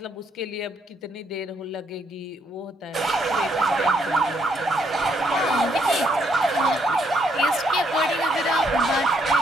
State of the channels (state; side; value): normal; both; correlation 0.73